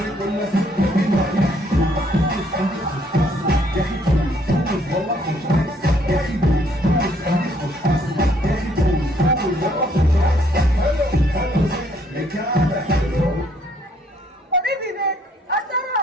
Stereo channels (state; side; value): normal; both; correlation 0.66